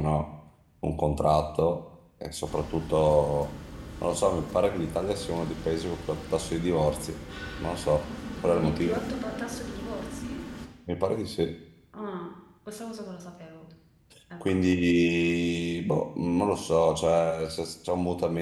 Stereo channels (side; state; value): both; identical; correlation 1.00